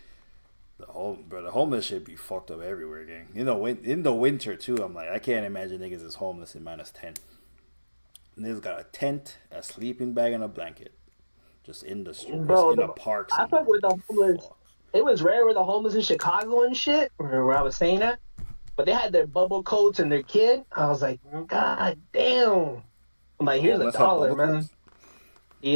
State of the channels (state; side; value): inverted; both; correlation -1.00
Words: The homeless shit be fucked up everywhere, gang. In the winter too, I'm like, I can't imagine niggas is homeless in -10. Niggas got a tent, a sleeping bag, and a blanket. Just in the streets, bro, in the parks. I fuck with the homeless. It was rare with the homeless in Chicago and shit, where I was saying that. But they had their bubble coats and their kid. I was like, God damn. I'm like, here's $1, man. Coats?